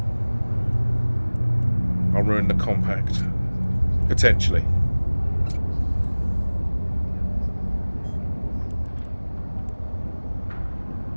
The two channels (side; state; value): both; inverted; correlation -1.00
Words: I'll ruin the compact. Potentially.